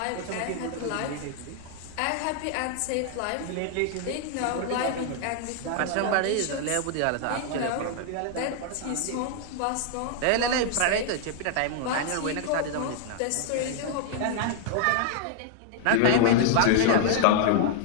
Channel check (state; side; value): different; both; correlation 0.00